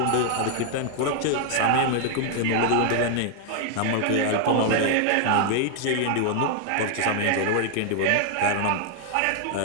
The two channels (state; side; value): different; both; correlation 0.00